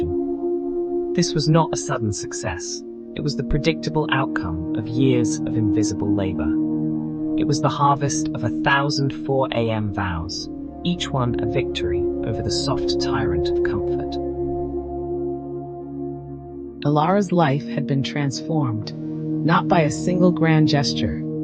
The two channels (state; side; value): identical; both; correlation 1.00